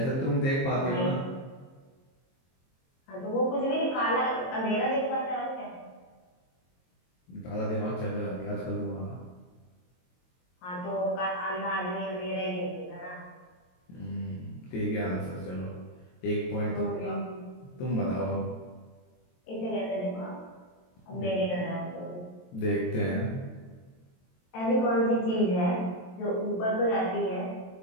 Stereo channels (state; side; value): late; right; 22 ms